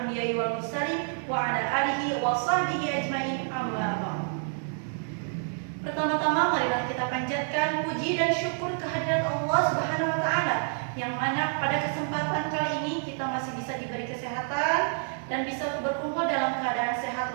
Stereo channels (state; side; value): silent; left; 57 dB below the other